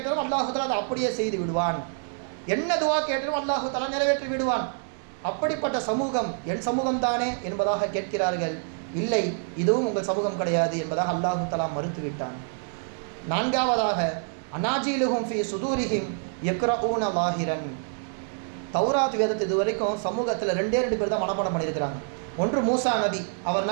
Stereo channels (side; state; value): left; silent; 60 dB below the other